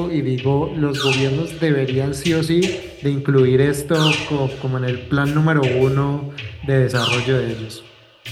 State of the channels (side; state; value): both; identical; correlation 1.00